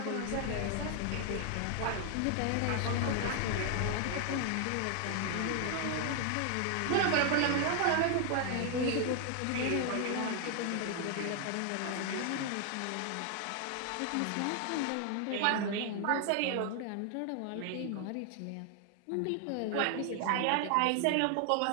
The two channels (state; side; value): different; both; correlation 0.00